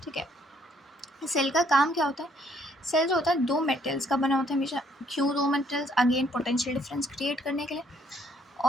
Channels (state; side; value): normal; both; correlation 0.66